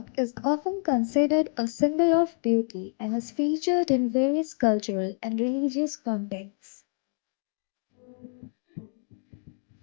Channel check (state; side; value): silent; right; 60 dB below the other